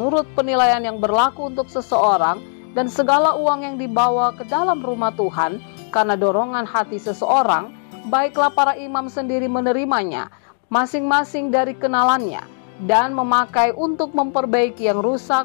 penilaian yang berlaku untuk seseorang, dan segala uang yang dibawa ke dalam rumah Tuhan karena dorongan hati seseorang, baiklah para imam sendiri menerimanya, masing-masing dari kenalannya, dan memakai untuk memperbaiki yang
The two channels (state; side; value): silent; right; digital silence